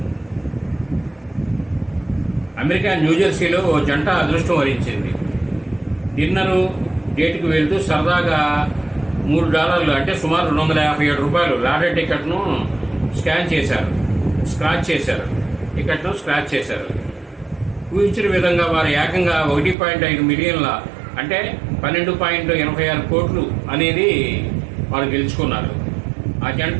అమెరికా న్యూజెర్సీలో ఓ జంట అదృష్టం వరించింది. డిన్నరు డేట్కి వెళ్తూ సరదాగా $3 అంటే సుమారు $257 లాటరీ టికెట్ను స్క్రాచ్ చేశారు. ఊహించిన విధంగా వారు ఏకంగా 1.5 మిలియన్ల అంటే 12.86 కోట్లు అనేది వారు గెలుచుకున్నారు. ఆ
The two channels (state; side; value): drops out; left; at 19.8 s